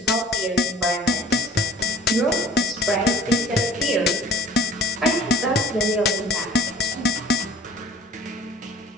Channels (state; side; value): normal; both; correlation 0.47